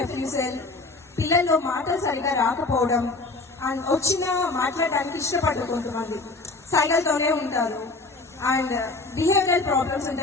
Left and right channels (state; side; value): quieter; right; 3.4 dB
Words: పిల్లల్లో మాటలు సరిగా రాకపోవడం, అండ్ వచ్చినా మాట్లాడడానికి ఇష్టపడరు, కొంతమంది సైకిల్తోనే ఉంటారు, అండ్ బిహేవియరల్ ప్రాబ్లమ్స్